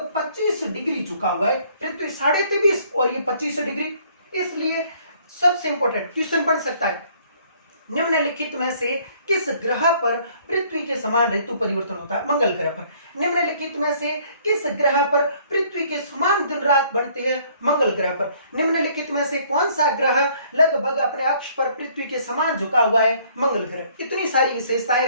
25 डिग्री झुका हुआ है। पृथ्वी 23.5 और ये 25 डिग्री। इसलिए सबसे इंपॉर्टेंट क्वेश्चन बन सकता है, निम्नलिखित में से किस ग्रह पर पृथ्वी के समान ऋतु परिवर्तन होता है? मंगल ग्रह पर। निम्नलिखित में से किस ग्रह पर पृथ्वी के समान दिन रात बनते हैं? मंगल ग्रह पर। निम्नलिखित में से कौन सा ग्रह लगभग अपने अक्ष पर पृथ्वी के समान झुका हुआ है? मंगल ग्रह। इतनी सारी विशेषताएं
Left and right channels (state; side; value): inverted; both; correlation -0.61